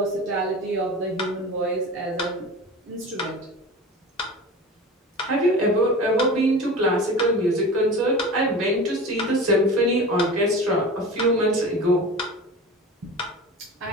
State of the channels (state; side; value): normal; both; correlation 0.34